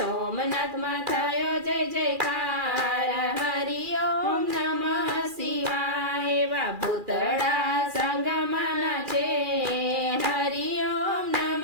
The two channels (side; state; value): left; late; 2.4 ms